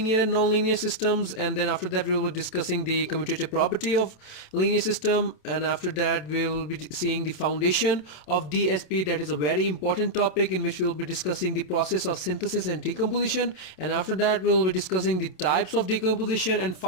and non-linear systems, and then after that we will be discussing the commutative property of linear system, and after that we will be seeing the foundation of DSP. That is a very important topic in which we will be discussing the process of synthesis and decomposition, and after that we will be discussing the types of decomposition, and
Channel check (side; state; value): right; late; 27 ms